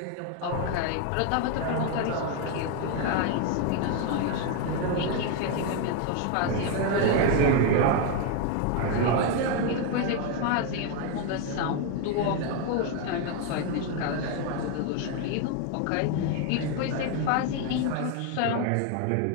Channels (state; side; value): different; both; correlation 0.01